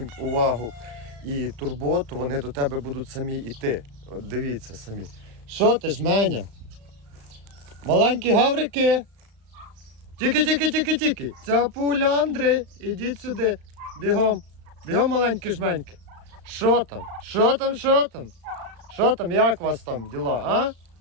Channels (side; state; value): left; late; 35 ms